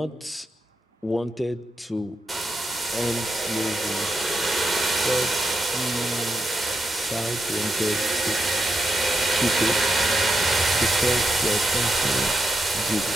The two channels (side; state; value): both; normal; correlation 0.85